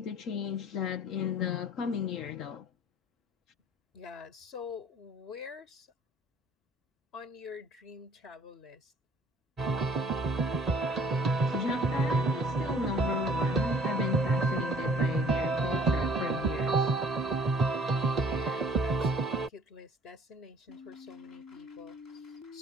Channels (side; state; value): both; normal; correlation 0.54